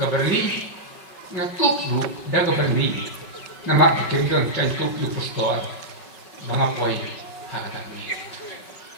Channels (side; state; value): right; late; 5.3 ms